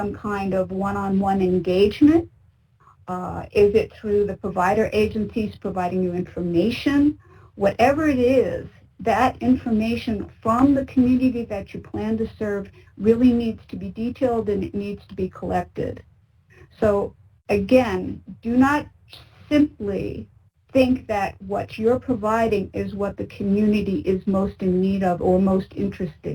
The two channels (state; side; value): identical; both; correlation 1.00